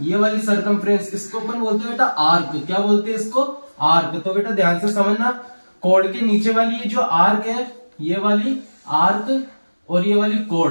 ये वाली सर्कमफ्रेंस, इसको अपन बोलते हैं बेटा आर्क। क्या बोलते हैं इसको, आर्क। तो बेटा ध्यान से समझना, कोड के नीचे वाली ये जो आर्क है, ये वाली आर्क और ये वाली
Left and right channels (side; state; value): both; inverted; correlation -1.00